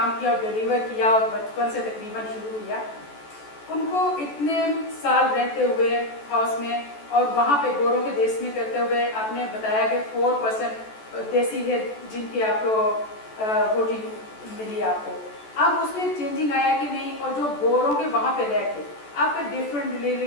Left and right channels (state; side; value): late; right; 14 ms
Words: کیا اور ڈیلیور کیا اور بچپن سے تقریباً شروع کیا, ان کو اتنے سال رہتے ہوئے ہاؤس میں اور وہاں پہ گوروں کے دیس میں کرتے ہوئے, آپ نے بتایا کہ 4% دیسی ہے جن کی آپ کو ووٹنگ ملی آپ کو. اب اس میں چینجنگ آیا کہ نہیں, اور جو گوروں کے وہاں پہ رہ کے آپ کا ڈفرینٹ